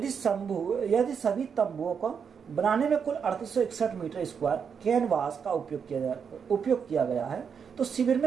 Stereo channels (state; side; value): quieter; left; 6.7 dB